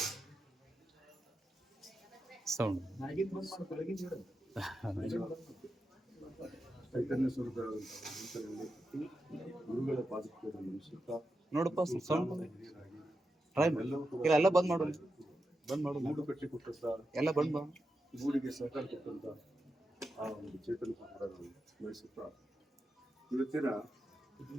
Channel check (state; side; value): normal; both; correlation 0.88